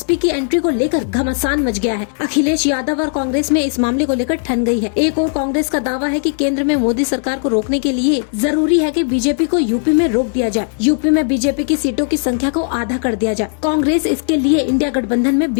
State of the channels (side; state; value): right; silent; 63 dB below the other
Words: की एंट्री को लेकर घमासान मच गया है। अखिलेश यादव और कांग्रेस में इस मामले को लेकर ठन गई है। एक और कांग्रेस का दावा है कि केंद्र में मोदी सरकार को रोकने के लिए जरूरी है कि बीजेपी को यूपी में रोक दिया जाए, यूपी में बीजेपी की सीटों की संख्या को आधा कर दिया जाए। कांग्रेस इसके लिए इंडिया गठबंधन में